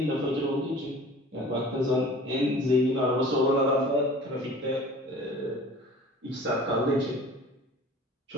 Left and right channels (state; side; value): normal; both; correlation 0.45